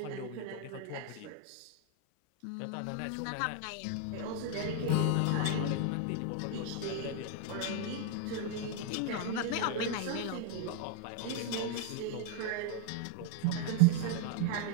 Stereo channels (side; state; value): both; different; correlation 0.01